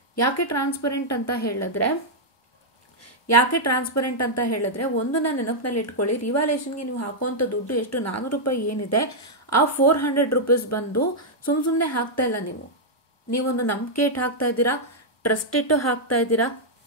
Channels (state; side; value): normal; both; correlation -0.05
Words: ಯಾಕೆ ಟ್ರಾನ್ಸ್ಪರೆಂಟ್ ಅಂತ ಹೇಳಿದ್ರೆ ಒಂದು ನಾನು ನೆನಪಿನಲ್ಲಿ ಇಟ್ಕೊಳ್ಳಿ, ರಿವ್ಯಾಲ್ಯೂಯೇಷನ್ಗೆ ನೀವು ಹಾಕುವಂಥ ದುಡ್ಡು ಎಷ್ಟು, 400 ರೂಪಾಯಿ ಏನಿದೆ, ಆ 400 ರೂಪೀಸ್ ಬಂದು ಸುಮ್ಮನೆ ಹಾಕ್ತಾ ಇಲ್ಲ. ನೀವೊಂದು ನಂಬಿಕೆ ಇಟ್ಟು ಹಾಕ್ತಾ ಇದ್ದೀರಾ, ಟ್ರಸ್ಟ್ ಇಟ್ಟು ಹಾಕ್ತಾ ಇದ್ದೀರಾ,